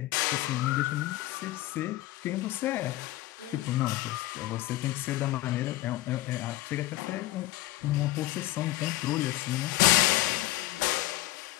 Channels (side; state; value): right; quieter; 17.1 dB